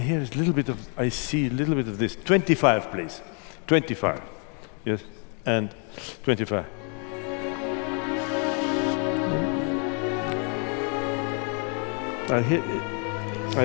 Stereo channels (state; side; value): quieter; right; 38.7 dB